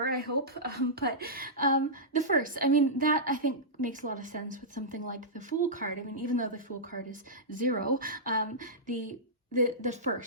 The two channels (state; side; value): normal; both; correlation -0.13